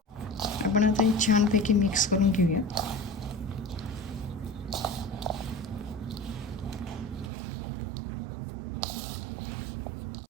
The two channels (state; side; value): drops out; left; at 7.3 s